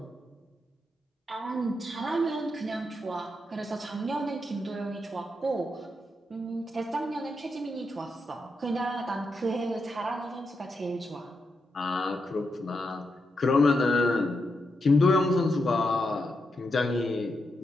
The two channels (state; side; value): normal; both; correlation 0.84